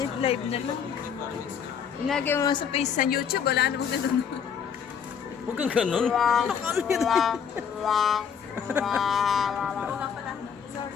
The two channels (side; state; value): right; quieter; 7.4 dB